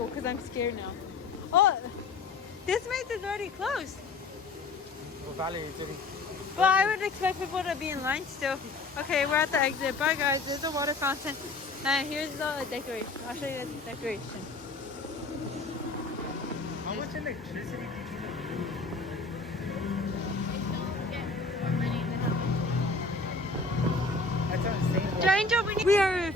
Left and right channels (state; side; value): quieter; right; 3.7 dB